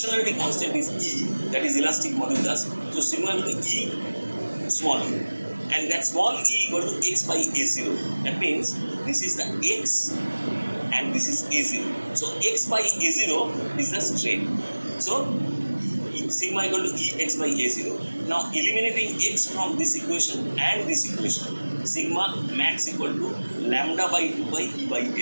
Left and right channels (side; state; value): both; inverted; correlation -1.00